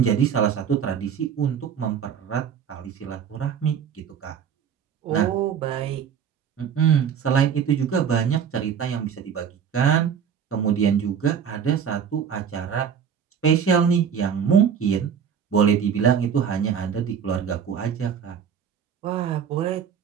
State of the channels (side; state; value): left; quieter; 7.7 dB